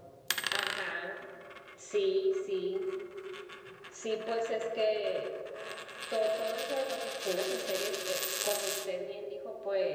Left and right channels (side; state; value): both; identical; correlation 1.00